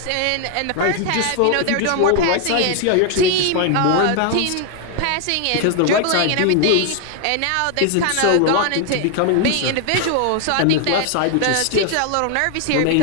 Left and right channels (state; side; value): different; both; correlation 0.00